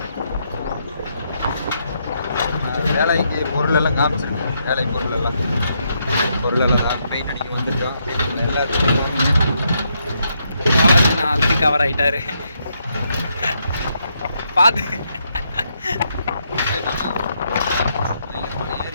வேலைக்கு பொருளெல்லாம் காமிச்சிருக்கேன். வேலை பொருளெல்லாம் பெயிண்ட் அடிக்க வந்துருக்கோம். எல்லாருக்கும் ஆல்ரெடி கவர் ஆகிட்டாரு. பார்த்து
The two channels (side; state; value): both; inverted; correlation -0.78